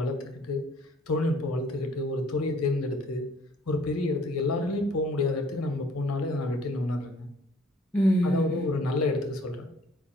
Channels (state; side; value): normal; both; correlation 0.57